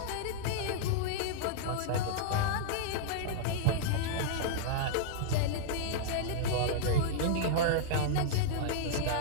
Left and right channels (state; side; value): different; both; correlation -0.02